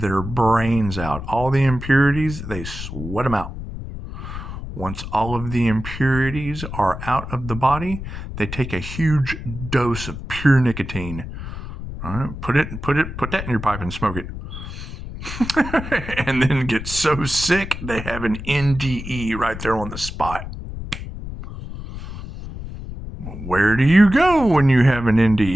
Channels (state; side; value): noise; left; rumble, 9 dB below the sound